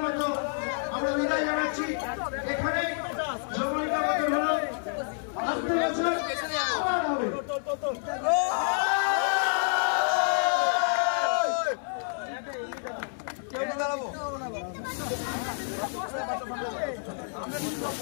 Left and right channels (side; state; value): right; silent; 59 dB below the other